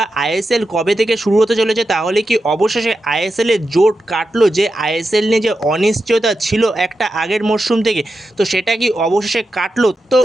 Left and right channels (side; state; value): both; normal; correlation 0.89